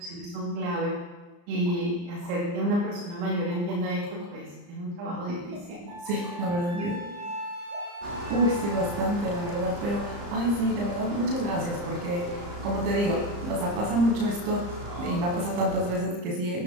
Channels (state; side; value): late; left; 34 ms